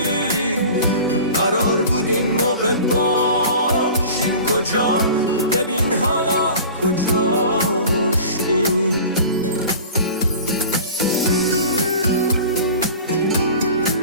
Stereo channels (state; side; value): inverted; both; correlation -0.39